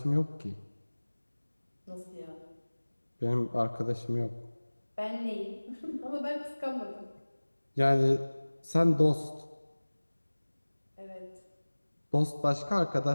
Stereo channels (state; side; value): inverted; both; correlation -1.00